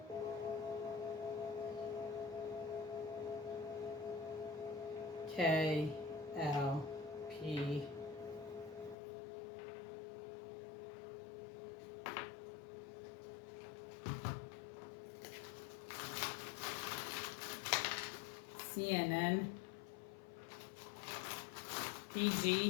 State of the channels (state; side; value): drops out; right; at 9.0 s